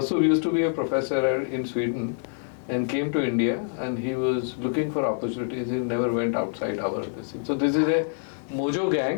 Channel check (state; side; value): silent; right; digital silence